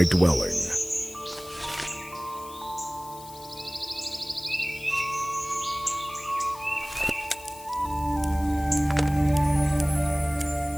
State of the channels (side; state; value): left; noise; hiss, 18 dB below the sound